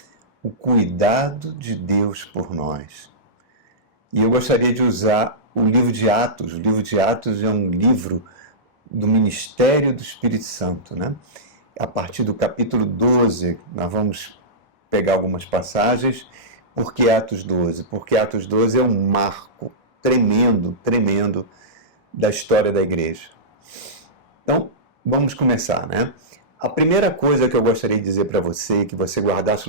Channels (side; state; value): both; normal; correlation -0.17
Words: O Cuidado de Deus por Nós. E eu gostaria de usar o livro de Atos. O livro de Atos é um livro do ministério do Espírito Santo, né? A partir do capítulo 12, nós vamos pegar algumas passagens. Por que Atos 12? Porque Atos 12 é um marco tremendo da história da igreja. Então, vamos começar, né? A primeira coisa que eu gostaria de dizer para você, que você guardasse